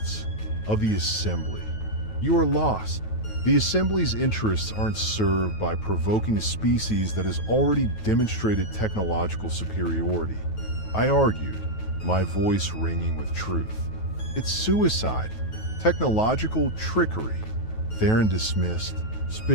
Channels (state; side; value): late; right; 9.2 ms